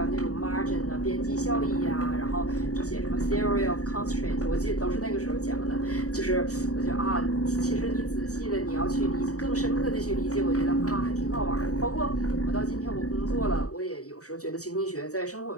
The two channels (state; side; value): late; right; 0.66 ms